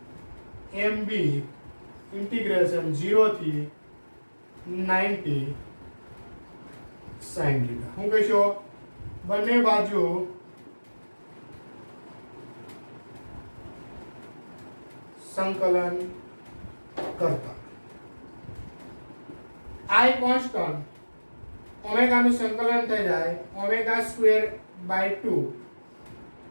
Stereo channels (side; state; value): both; inverted; correlation -1.00